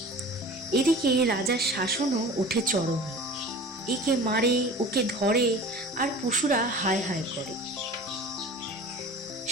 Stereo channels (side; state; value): both; normal; correlation 0.40